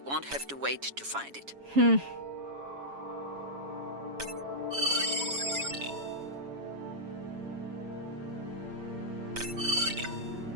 have to wait to find it.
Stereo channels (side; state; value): left; late; 7.2 ms